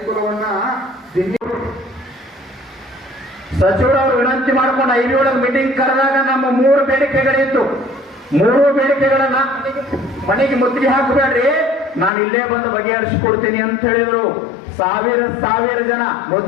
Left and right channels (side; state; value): right; drops out; at 12.1 s